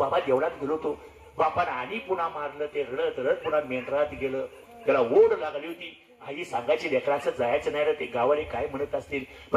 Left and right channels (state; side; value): identical; both; correlation 1.00